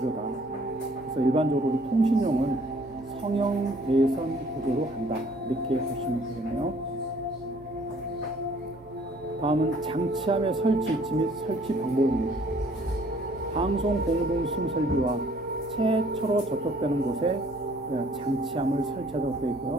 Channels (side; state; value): both; normal; correlation 0.58